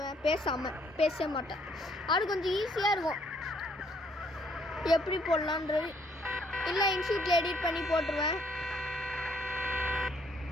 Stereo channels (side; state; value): both; normal; correlation 0.67